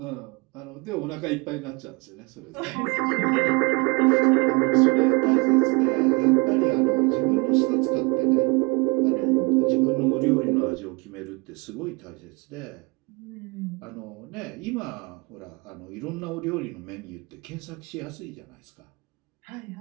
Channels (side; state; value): left; quieter; 28.6 dB